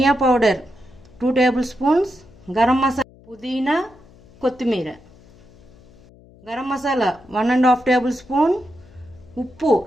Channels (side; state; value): left; noise; hum, 25 dB below the sound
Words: powder 2 tablespoons, garam masala, పుదీనా, కొత్తిమీర, గరం మసాలా 1½ టేబుల్ స్పూన్, ఉప్పు